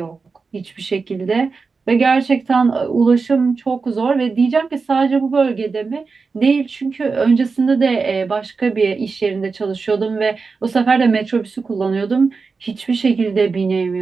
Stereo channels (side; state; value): left; quieter; 4.6 dB